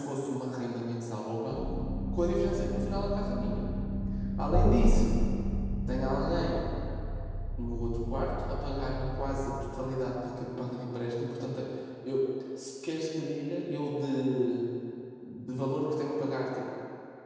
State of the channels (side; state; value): both; identical; correlation 1.00